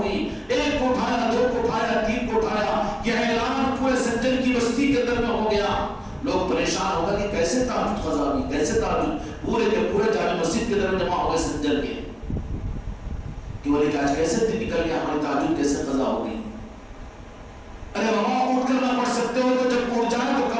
گئی۔ ایک کو اٹھایا، دو کو اٹھایا، تین کو اٹھایا، یہ اعلان پورے سنجر کی بستی کے اندر میں ہو گیا۔ لوگ پریشان ہو گئے کہ کیسے تہجد قضا ہوئی، کیسے تہجد، پورے کے پورے جامع مسجد کے اندر جمع ہو گئے سنجر کے کہ بولے کہ آج کیسے دن نکل گیا، ہماری تہجد کیسے قضا ہو گئی۔ ارے بابا اٹھ کر نہ پڑھ سکتے ہو تو جب اٹھ جائے تو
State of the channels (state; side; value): identical; both; correlation 1.00